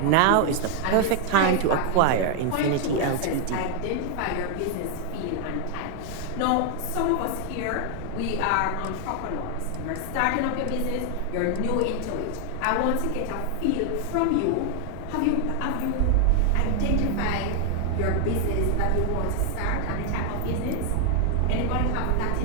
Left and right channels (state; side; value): different; both; correlation 0.00